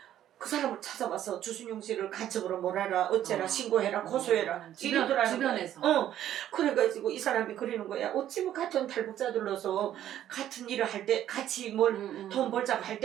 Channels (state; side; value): quieter; left; 11.6 dB